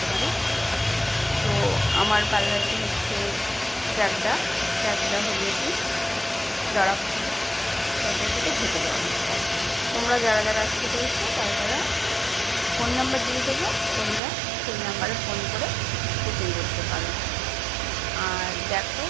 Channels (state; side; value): drops out; left; at 14.2 s